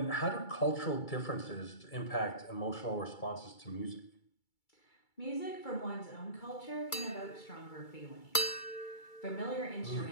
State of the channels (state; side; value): late; right; 2.3 ms